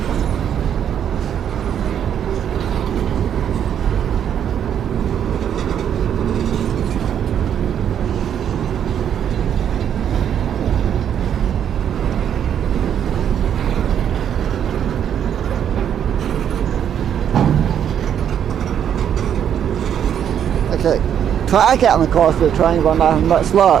Okay, track out in the course of the train, but I'm not having much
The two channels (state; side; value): quieter; left; 9.1 dB